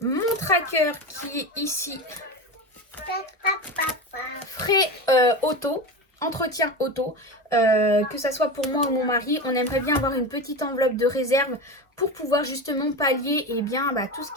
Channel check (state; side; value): normal; both; correlation 0.23